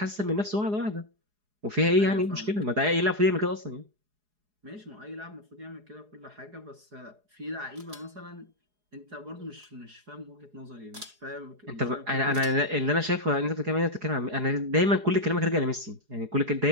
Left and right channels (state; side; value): late; left; 4.8 ms